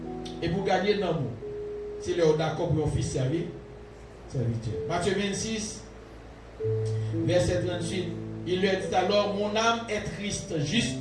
Et pour gagner l'amour, c'est le d'accord pour un fils servir. Matthieu 26, verset 38. Il lui a dit alors, mon âme est triste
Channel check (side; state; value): both; identical; correlation 1.00